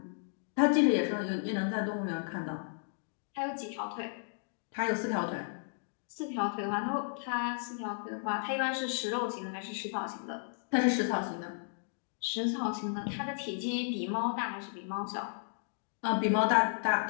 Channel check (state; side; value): silent; right; digital silence